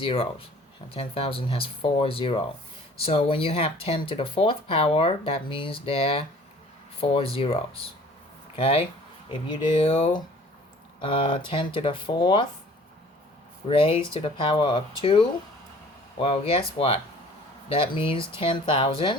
10,000 has 4 zeros. So when you have 10 to the 4th power, that means there are 4 zeros. Okay? If you do 10 to the 4th raised to the power of 2, well, guess what? That means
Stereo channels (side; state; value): both; normal; correlation 0.50